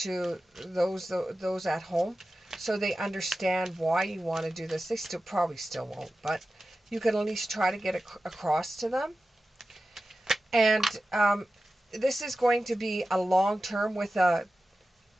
those at home, so they understand why you want to do this. They probably still won't, but you can at least try to get it across to them. And this is going to be a long term with a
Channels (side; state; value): both; normal; correlation 0.94